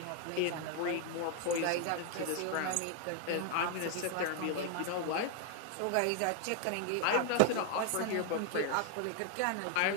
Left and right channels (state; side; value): different; both; correlation 0.00